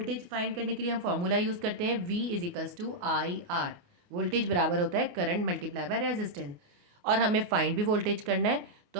फाइंड करने के लिए हम फॉर्मूला यूज़ करते हैं V = IR। वोल्टेज बराबर होता है करंट मल्टीप्लाई बाय रेजिस्टेंस, और हमें फाइंड भी वोल्टेज करना है तो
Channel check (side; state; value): left; late; 28 ms